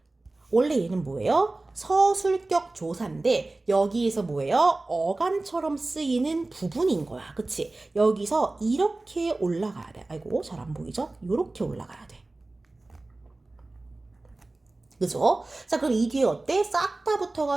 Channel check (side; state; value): left; quieter; 3.0 dB